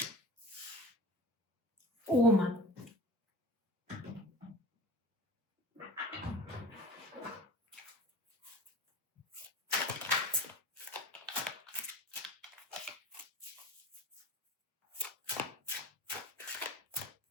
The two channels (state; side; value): normal; both; correlation 0.38